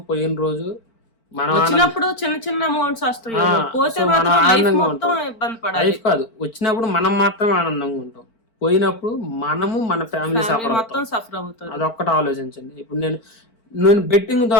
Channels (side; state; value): right; late; 4.4 ms